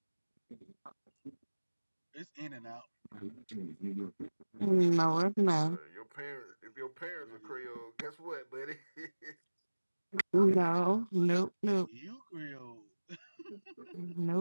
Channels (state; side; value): inverted; both; correlation -1.00